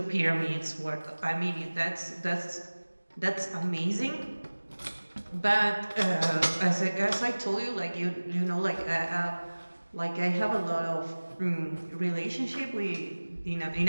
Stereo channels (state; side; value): inverted; both; correlation -1.00